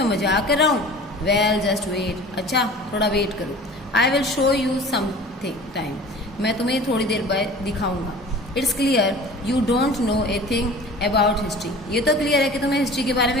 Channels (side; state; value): both; normal; correlation 0.42